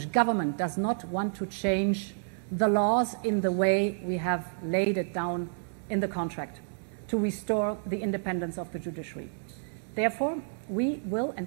government does not want to change the laws in the way we have laid it down in the contract to restore the independence of the judiciary. Therefore, we will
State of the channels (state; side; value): silent; left; digital silence